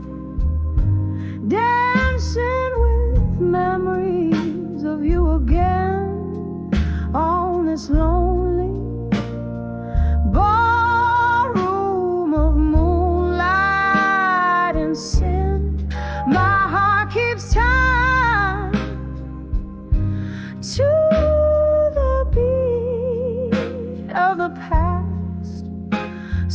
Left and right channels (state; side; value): identical; both; correlation 1.00